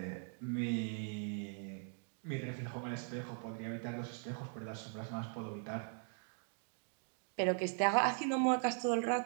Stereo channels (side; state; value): left; silent; 51 dB below the other